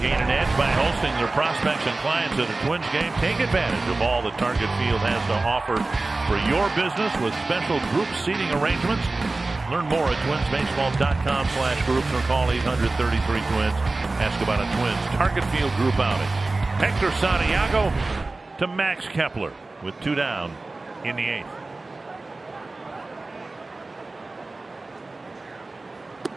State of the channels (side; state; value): left; quieter; 3.3 dB